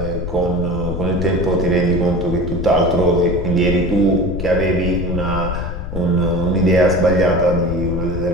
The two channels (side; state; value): left; noise; rumble, 6 dB below the sound